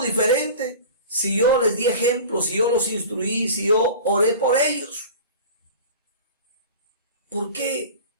diferente si yo les di ejemplos, si yo los instruí, si yo oré por ellos? ¿Por qué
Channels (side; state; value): both; inverted; correlation -0.37